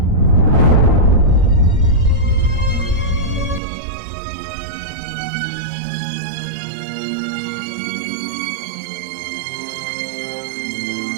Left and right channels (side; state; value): left; drops out; at 3.6 s